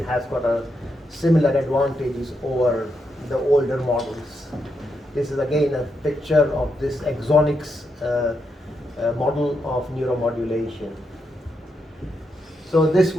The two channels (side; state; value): both; normal; correlation 0.82